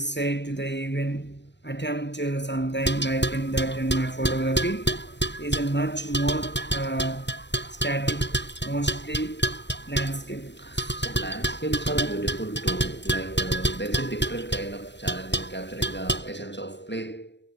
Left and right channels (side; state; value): right; late; 0.51 ms